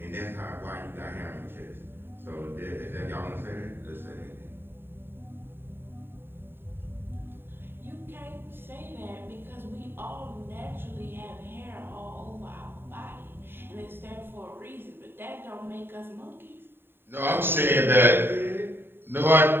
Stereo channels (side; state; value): left; late; 0.11 ms